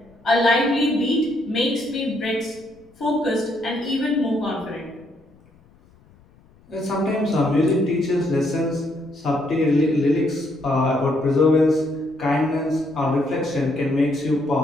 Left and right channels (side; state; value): left; noise; rumble, 29 dB below the sound